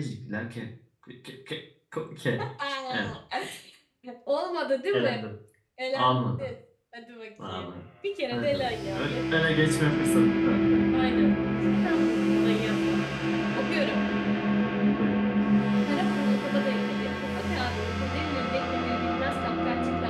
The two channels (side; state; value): both; identical; correlation 1.00